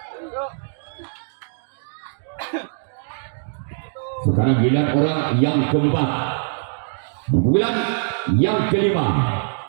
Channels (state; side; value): silent; left; digital silence